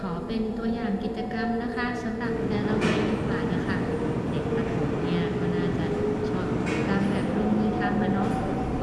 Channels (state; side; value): identical; both; correlation 1.00